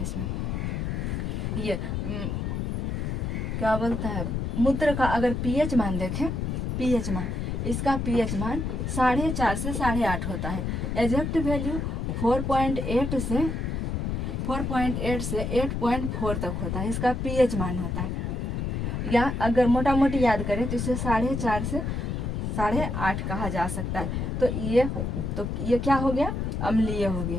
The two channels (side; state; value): left; noise; rumble, 2 dB below the sound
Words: इसमें। ये क्या बोलता है, मूत्र का अगर पीएच मान देखें, पीएच मान, इसका पीएच मान 4.5 से 8.5 होता है। एग्जैक्ट वैल्यू 4.8 से 8.4 तक होता है, इसका पीएच मान होता है। या अगर मोटा मोटी याद करें तो इसे 4.5 से 8.5 कहा जा सकता है। तो ये क्या हो गया, अम्लीय हो